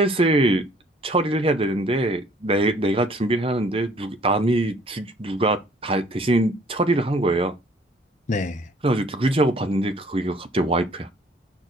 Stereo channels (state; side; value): normal; both; correlation 0.57